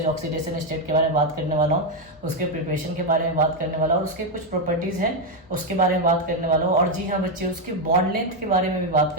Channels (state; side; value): normal; both; correlation 0.04